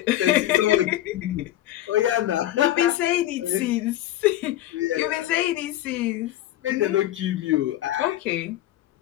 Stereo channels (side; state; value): right; quieter; 14.0 dB